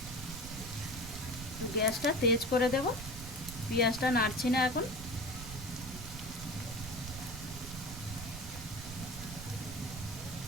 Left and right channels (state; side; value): noise; right; rumble, 10 dB below the sound